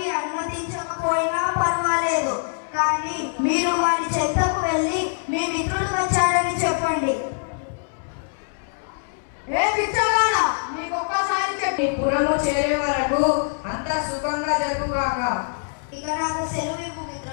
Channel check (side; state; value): right; silent; 63 dB below the other